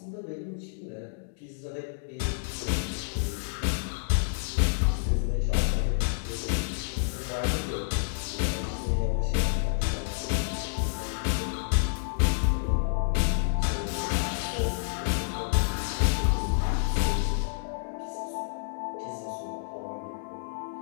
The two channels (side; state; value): right; silent; digital silence